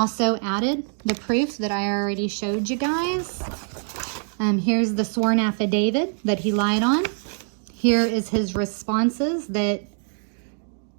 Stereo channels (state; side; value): silent; left; 63 dB below the other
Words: added the proof that I already showed you guys. Here's the sworn affidavit that he lied on. Here is his responses that